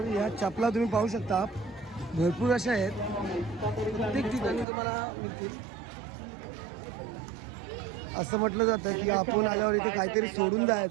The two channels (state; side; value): drops out; left; at 4.7 s